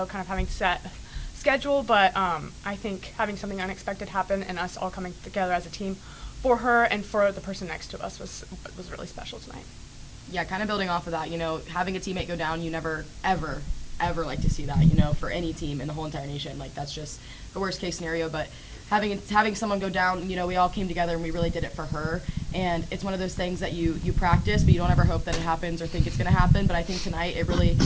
kind of having set schedule, but I think having something unexpected happen and us all coming together as a team for her and for the person next to us was really special tonight. Yeah, kind of building off of that, having a teammate go down, you never, ever, ever like to see that, for any team in the whole entire nation. Like, that's just the worst case scenario, but having someone go down, we all came together and we really did it for her. And it's one of those things that you practice, but you don't ever hope that it happens or think it's going to happen. But I think tonight it really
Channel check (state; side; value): identical; both; correlation 1.00